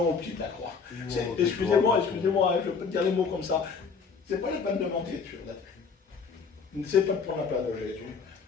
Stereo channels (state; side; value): quieter; right; 5.5 dB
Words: au pied de la croix. Excusez-moi, je peux te dire les mots comme ça. C'est pas la peine de mentir sur la tête. C'est pas de prendre la place de Jésus.